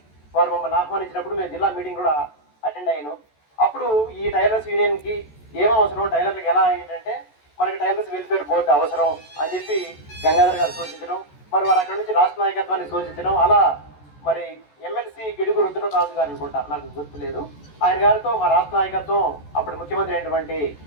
వారు మమ్మల్ని ఆహ్వానించినప్పుడు మేము జిల్లా మీటింగ్ కూడా అటెండ్ అయ్యాను. అప్పుడు ఈ టైలర్స్ యూనియన్కి ఏం అవసరం, టైలర్లకు ఎలా ఏంటంటే మనకి టైలర్స్ వెల్ఫేర్ బోర్డు అవసరం అని చెప్పి గంగాధర్ గారు సూచించడం, మరి వారు అక్కడ నుంచి రాష్ట్ర నాయకత్వాన్ని సూచించడం. అలా మరి ఎమ్మెల్సీ గిడుగు రుద్రరాజు గారు అనుకుంటా, నాకు గుర్తులేదు, ఆయన గారితో మా రాష్ట్ర నాయకత్వం అప్పుడు ముఖ్యమంత్రి అయినటువంటి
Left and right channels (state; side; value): late; right; 14 ms